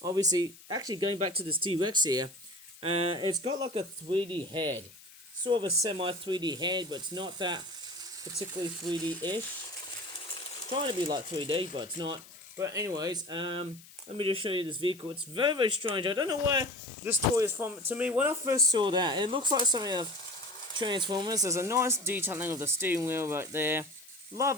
Obviously, actually going back to this T-Rex here, it's got like a 3D head. Sort of a semi-3D head, but it's not that particularly 3D-ish. Trying to be like 3D, but it's not. But anyways, let me just show you this vehicle. It's very, very strange. I don't know where this toy is from. To me, when I first saw that, it looks like something of Transformers. There's a nice detailing of the steering wheel right there.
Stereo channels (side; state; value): left; noise; hiss, 21 dB below the sound